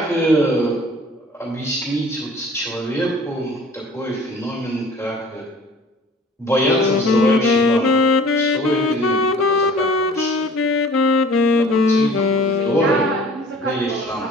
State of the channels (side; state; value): both; normal; correlation 0.48